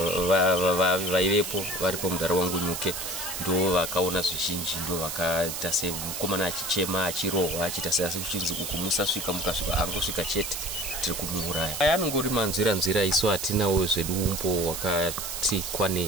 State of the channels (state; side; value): noise; right; hiss, 5 dB below the sound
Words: vaivepo varipo mudare wangu Nyuke ndo vakaona zvizhinji ndo vakaita semukomana achichema achirohwa achiita seasi kuchinzi uku musasvika mukasvika angosvika chete tiri kumuuraya. Anongori manzira isu hatinawo zvedu umbo wakati